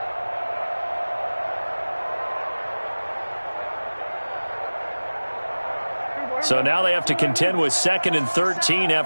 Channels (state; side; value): inverted; both; correlation -1.00